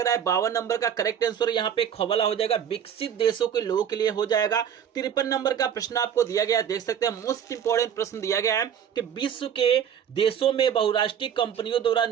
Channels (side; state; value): left; quieter; 8.7 dB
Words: रहा है 52 नंबर का करेक्ट आंसर यहाँ पे खबला हो जाएगा, विकसित देशों के लोगों के लिए हो जाएगा। 53 नंबर का प्रश्न आपको दिया गया है, देख सकते हैं। मोस्ट इंपॉर्टेंट प्रश्न दिया गया है कि विश्व के देशों में बहुराष्ट्रीय कंपनियों द्वारा